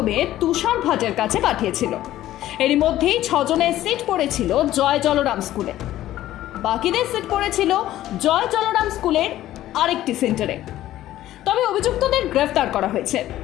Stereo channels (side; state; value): right; quieter; 14.0 dB